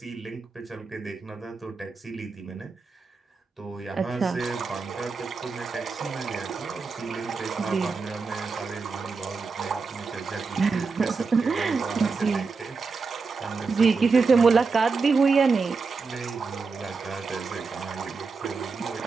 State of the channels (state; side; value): quieter; left; 4.6 dB